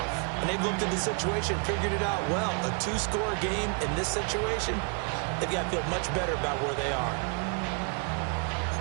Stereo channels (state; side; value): quieter; left; 37.0 dB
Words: And they've looked at the situation, figured it out well. A 2-score game in this situation, they've got to feel much better about where they are.